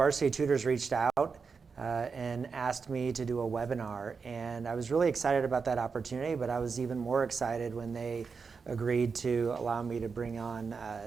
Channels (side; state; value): left; quieter; 5.2 dB